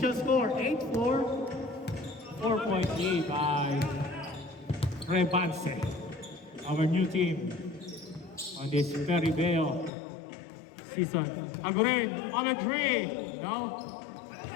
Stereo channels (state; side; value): drops out; right; at 9.9 s